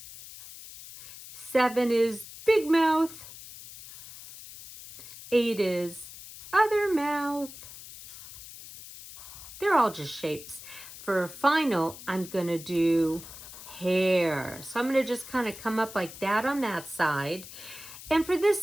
7 is big mouth. 8 is other mouth. They're all just shapes. For final, I'm going to do hair. So I'm going to just kind of come up like that on that side. And for this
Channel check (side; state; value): left; noise; hiss, 15 dB below the sound